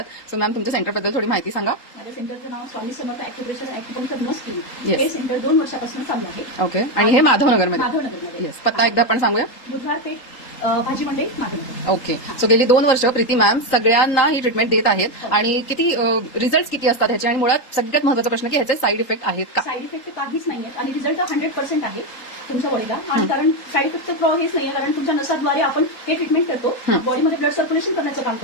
सो मॅम तुमच्या सेंटरबद्दल थोडी माहिती सांगा. माझ्या सेंटरचं नाव Swami Samarth acupressure and acupuncture नस क्लिनिक. Yes. हे सेंटर 2 वर्षापासून चालू आहे. ओके. आणि हे माधवनगरमध्ये. माधवनगरमध्ये. येस. पत्ता एकदा आपण सांगूया. बुधवार पेठ भाजी मंडई माधवनगर. ओके. सो गेली 2 वर्ष प्रीती मॅम सगळ्यांना ही ट्रीटमेंट देत आहेत. आणि किती रिझल्ट किती असतात ह्याचे, आणि मुळात सगळ्यात महत्त्वाचा प्रश्न की ह्याचे साईड इफेक्ट आहेत का? साईड इफेक्ट काहीच नाहीये आणि रिझल्ट 100% आहे तुमच्या बॉडीला. आणि कारण साईड इफेक्ट हेच नाहीये, कारण तुमच्या नसाद्वारे आपण हे ट्रीटमेंट करतो. बॉडीमध्ये ब्लड सर्क्युलेशन करण्याचं काम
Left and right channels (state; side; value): late; right; 3.8 ms